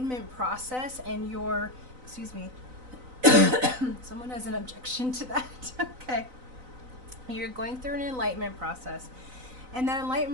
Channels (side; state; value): left; late; 3.9 ms